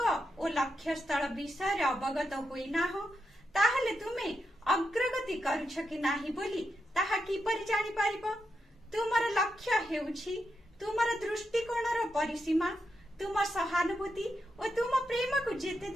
लक्ष्य स्थल विषय अवगत होइना हो ताहले तुमे अग्रगति करुछ कि नाही बोली ताहा किपरि जानि पारिबो। तुमर लक्ष्य हेउछि तुमर दृष्टिकोणर परिसीमा, तुम सहानुभूति और तुम प्रेम को जेते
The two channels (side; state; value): both; normal; correlation 0.85